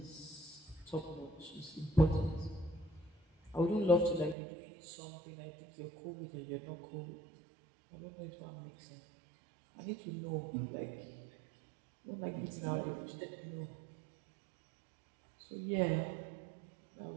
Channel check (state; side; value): drops out; left; at 4.4 s